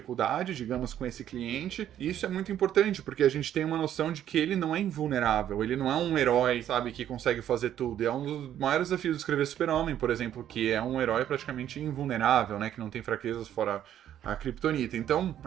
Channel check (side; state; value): left; quieter; 10.9 dB